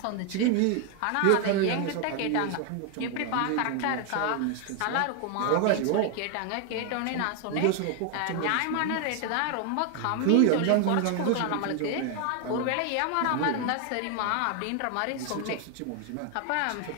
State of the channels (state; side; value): different; both; correlation 0.00